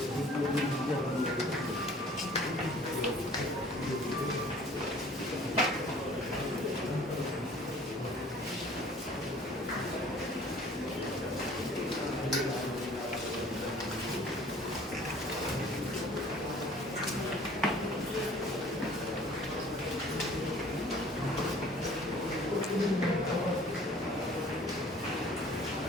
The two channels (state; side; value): normal; both; correlation 0.51